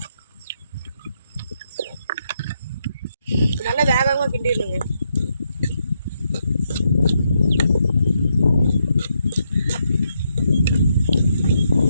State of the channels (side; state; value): both; inverted; correlation -0.79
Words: நல்லா வேகமாக கிண்டிடணுங்க.